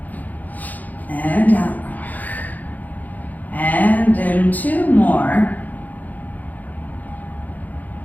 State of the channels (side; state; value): right; late; 0.081 ms